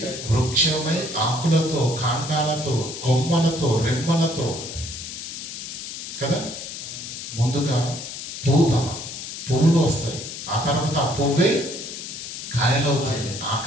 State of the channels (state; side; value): noise; left; hiss, 9 dB below the sound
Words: వృక్షమై ఆకులతో, కాండాలతో, కొమ్మలతో, రెమ్మలతో కదా, ముందుగా పువ్వులు వస్తాయి. ఆ తర్వాత ఆ పువ్వే కాయలవుతుంది, ఆ